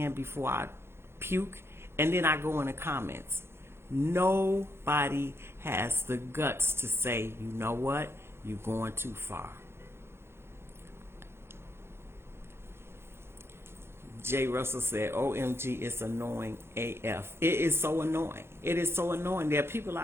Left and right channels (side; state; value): left; late; 0.12 ms